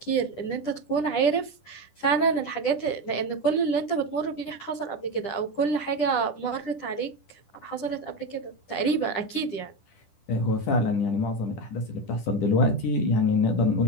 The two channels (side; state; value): right; late; 10 ms